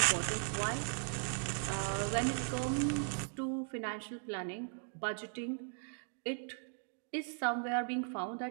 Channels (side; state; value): left; silent; 53 dB below the other